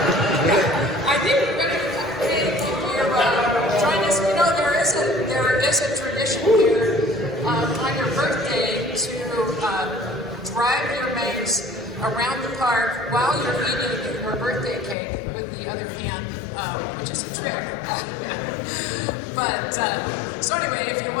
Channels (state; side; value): drops out; right; at 15.0 s